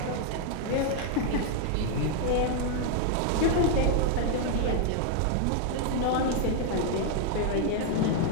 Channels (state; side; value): different; both; correlation 0.00